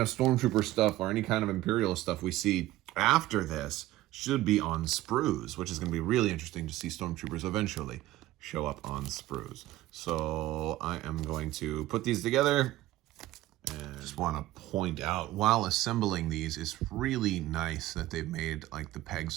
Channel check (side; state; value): left; quieter; 16.0 dB